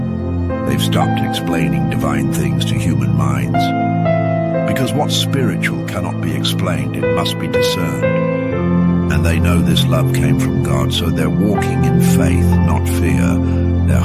They've stopped explaining divine things to human minds. Because what's spiritual cannot be explained, it must be discerned. And they know this love came from God, so they're walking in faith, not fear. Their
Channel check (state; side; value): identical; both; correlation 1.00